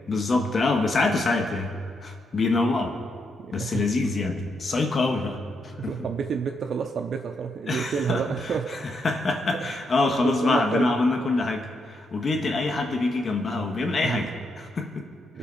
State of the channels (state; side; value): normal; both; correlation 0.80